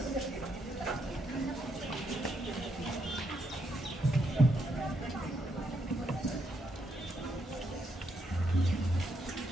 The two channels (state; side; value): normal; both; correlation 0.78